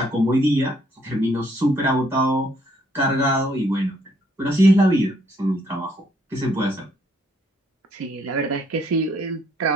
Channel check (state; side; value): normal; both; correlation 0.68